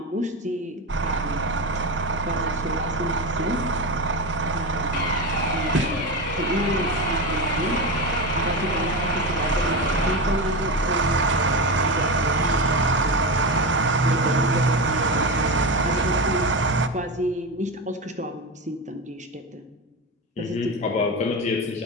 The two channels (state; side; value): normal; both; correlation 0.18